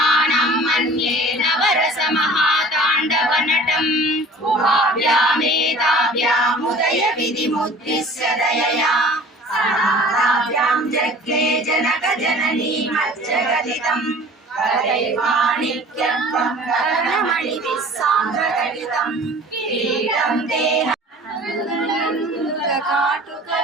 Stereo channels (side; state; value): both; normal; correlation 0.45